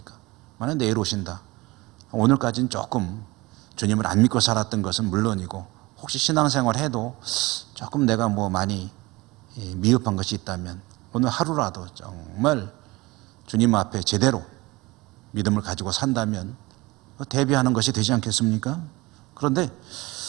만약 내일 오신다. 오늘까지는 조금 주님을 안 믿고 살았던 것은 물론이고 혹시 신앙생활 해도 조금 내가 많이 미흡한 것이 있다면 오늘 하루라도 정말 주님 앞에 제대로 믿음을 가지고 산다면 대비하는 것이 되지 않겠습니까? 그런데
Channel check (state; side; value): quieter; left; 22.0 dB